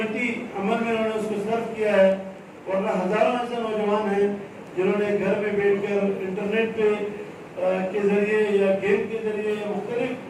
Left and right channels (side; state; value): both; identical; correlation 1.00